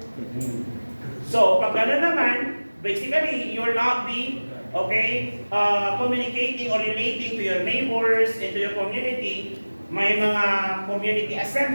So, pag gano'n naman, basically, you will not be, communicating or relating to your neighbors and to your community. May mga community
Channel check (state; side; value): inverted; both; correlation -1.00